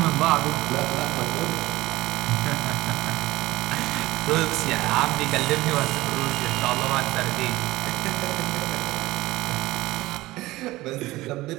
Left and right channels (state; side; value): quieter; left; 18.5 dB